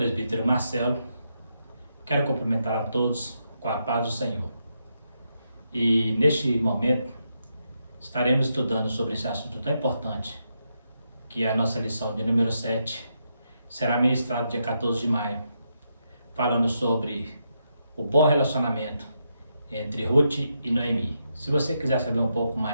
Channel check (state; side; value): inverted; both; correlation -0.82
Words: Marcelo, quero cumprimentar a todos com a paz do Senhor. E neste momento estaremos estudando sobre esse assunto tão importante, que é a nossa lição de número 7, será ministrado dia 14 de maio, falando sobre o bom relacionamento entre Ruth e Noemi. Se você quiser saber um pouco